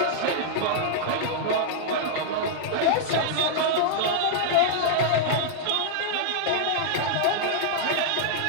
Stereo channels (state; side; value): different; both; correlation -0.01